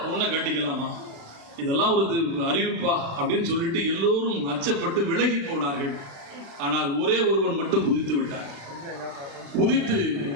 பொண்ணை கட்டிக்கலாமா? இதெல்லாம் ஒரு அறிவிப்பா அப்படின்னு சொல்லிட்டு எல்லோரும் அச்சப்பட்டு விலகி போனார்கள். ஆனால் ஒரே ஒருவன் மட்டும் குதித்து விட்டார். குதித்து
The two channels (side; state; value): left; late; 36 ms